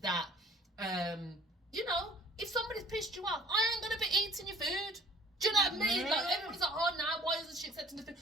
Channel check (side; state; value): both; normal; correlation 0.52